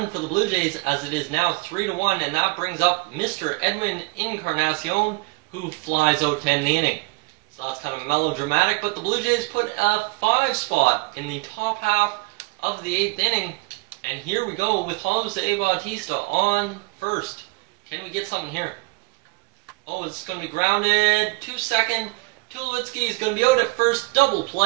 for the Blue Jays as it is now 3-1, and that brings up Mr. Edwin Encarnacion, who flies out to end the inning. So that's kind of melodramatic, but the Blue Jays put a 5 spot in the top half of the 8th inning, and here we go with Jose Bautista on first. Can we get something here? Oh, it's going to be grounded. 2-2. Tulowitzki is going to be out at first. Double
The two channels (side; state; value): left; quieter; 26.6 dB